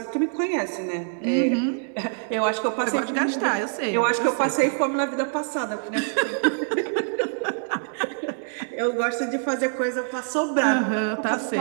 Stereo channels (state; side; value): silent; left; digital silence